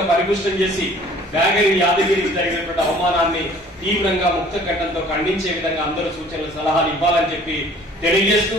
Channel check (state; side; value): normal; both; correlation 0.53